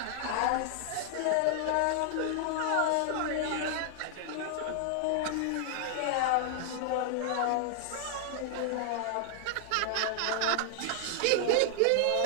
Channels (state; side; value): different; both; correlation 0.00